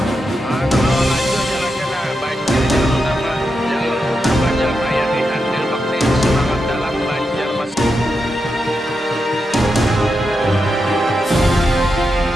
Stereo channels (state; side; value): normal; both; correlation 0.87